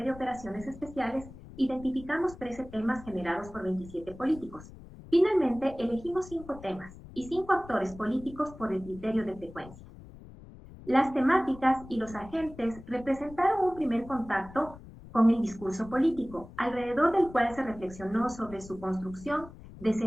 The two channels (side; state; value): left; noise; rumble, 17 dB below the sound